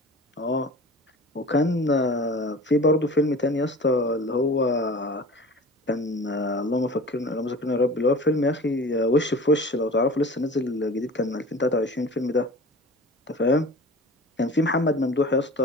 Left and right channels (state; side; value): normal; both; correlation 0.40